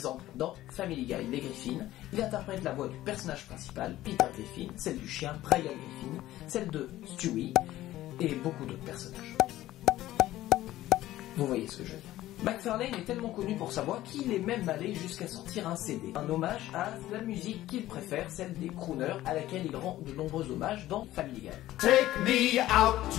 dans Family Guy, Les Griffins, il interprète la voix du personnage principal, Peter Griffin, celle du chien, Brian Griffin, celle de Stewie, et beaucoup d'autres personnages. Vous voyez ce que je veux dire. MacFarlane est tellement connu pour sa voix qu'il est même allé jusqu'à sortir un CD, un hommage à la musique qu'il préfère, celle des crooners, à laquelle il rend de nombreux hommages dans Family Guy. Take me out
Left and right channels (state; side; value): quieter; right; 15.0 dB